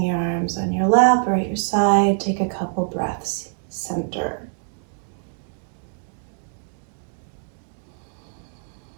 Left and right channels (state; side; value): silent; left; digital silence